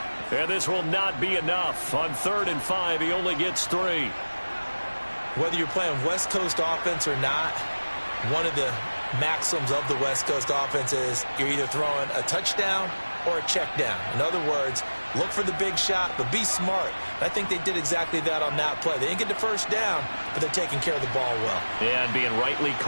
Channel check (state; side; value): inverted; both; correlation -1.00